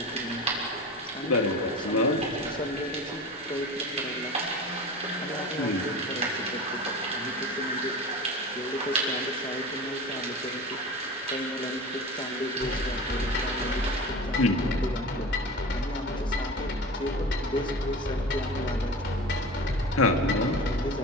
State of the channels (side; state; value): both; normal; correlation 0.32